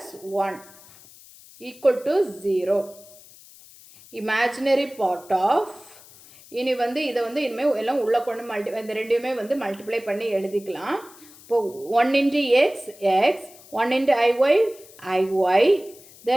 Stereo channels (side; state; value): left; noise; hiss, 22 dB below the sound